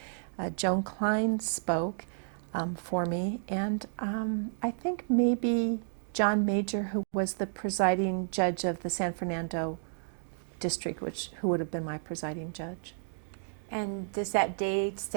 Joan Klein spoke for me, and I think maybe John Major, who was the presiding judge of the San Fernando district, who would have been my presiding judge. And does that day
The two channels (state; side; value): silent; left; digital silence